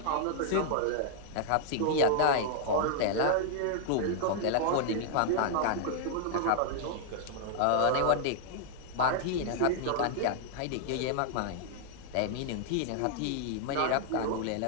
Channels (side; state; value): both; different; correlation 0.00